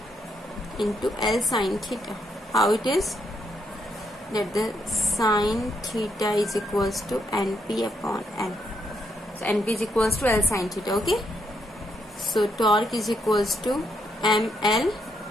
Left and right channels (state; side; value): normal; both; correlation 0.77